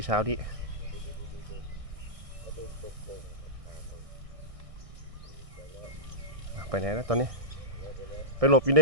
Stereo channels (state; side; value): late; left; 1.6 ms